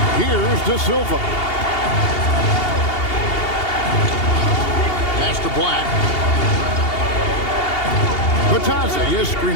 Here's De Silva. Pass to Black. Bitadze is screen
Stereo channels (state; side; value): late; right; 2.8 ms